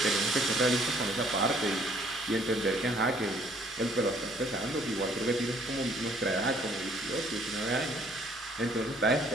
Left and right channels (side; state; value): both; normal; correlation 0.61